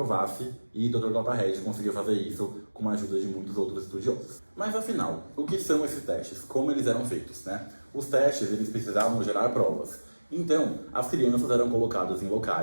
e Dr. Clapahead conseguiu fazer isso com a ajuda de muitos outros estudiosos. Mas afinal, o que são esses testes? Como eles eram feitos, né? Os testes, eles precisavam gerar provas. Então, as crianças eram colocadas em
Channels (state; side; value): inverted; both; correlation -1.00